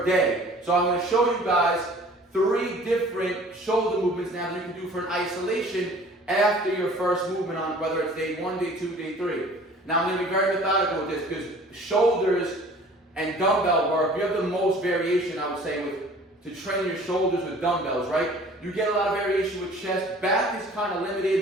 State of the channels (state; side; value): normal; both; correlation 0.49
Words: day. So I'm going to show you guys 3 different shoulder movements now that you can do for an isolation after your first movement on whether it's day 1, day 2, day 3. Now I'm going to be very methodical with this because shoulders and dumbbell work, you have the most variation, I would say, to train your shoulders with dumbbells, right? You get a lot of variation with chest. Back is kind of